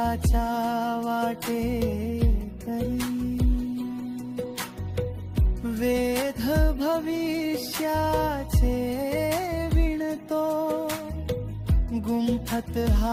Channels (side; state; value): both; identical; correlation 1.00